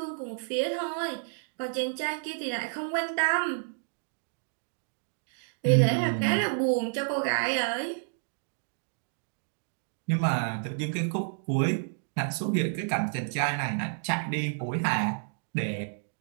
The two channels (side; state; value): left; silent; digital silence